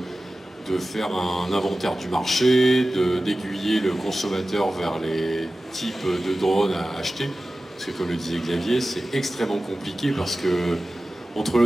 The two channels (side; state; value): both; normal; correlation 0.95